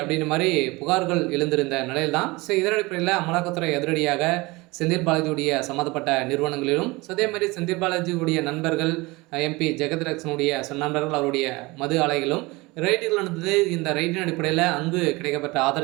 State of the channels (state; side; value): quieter; left; 23.2 dB